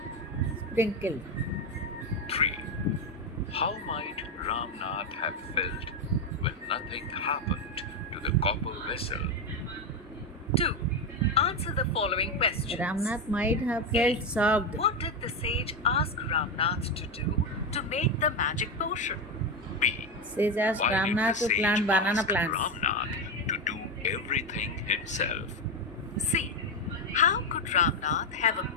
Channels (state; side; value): normal; both; correlation 0.11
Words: Sprinkled. 3. How might Ramnath have felt when nothing happened to the copper vessel? 2. Answer the following questions. Ramnath might have felt shocked. What did the sage ask Ramnath to do to make the magic potion? B. Sage asked Why did Ramnath the to plant sage banana ask plants. Ramnath to do everything himself? C. How could Ramnath have a